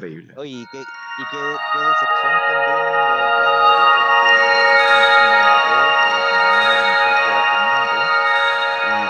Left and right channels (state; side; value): identical; both; correlation 1.00